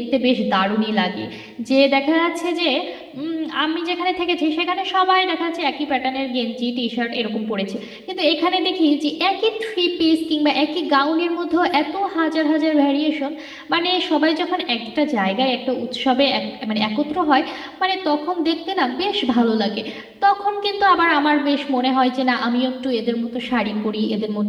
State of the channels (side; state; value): both; identical; correlation 1.00